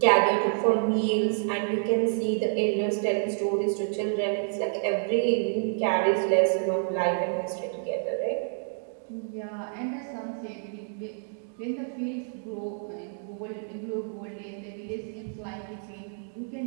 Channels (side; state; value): left; silent; digital silence